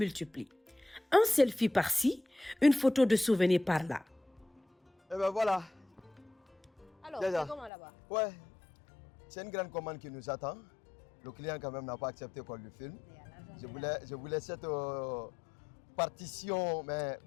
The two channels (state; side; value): drops out; right; at 7.7 s